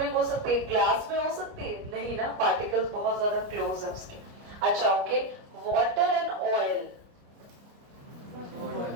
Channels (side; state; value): left; late; 29 ms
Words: हो सकती है, ग्लास में हो सकती है नहीं ना, पार्टिकल्स बहुत ज्यादा क्लोज है उसके। अच्छा okay, water and oil.